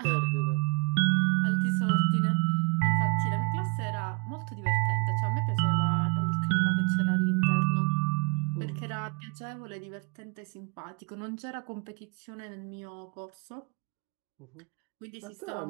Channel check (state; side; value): quieter; left; 35.4 dB